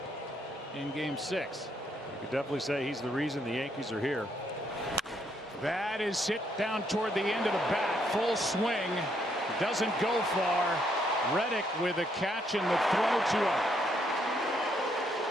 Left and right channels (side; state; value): both; normal; correlation 0.73